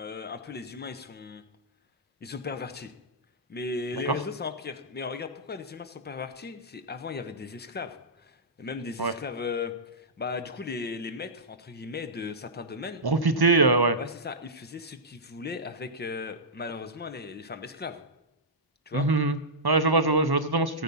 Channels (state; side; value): normal; both; correlation -0.12